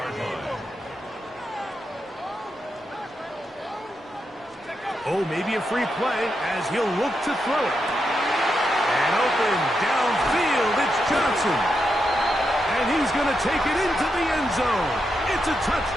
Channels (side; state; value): both; normal; correlation 0.84